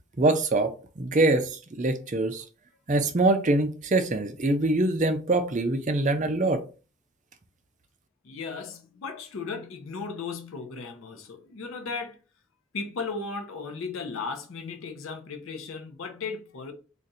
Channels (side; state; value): both; normal; correlation 0.41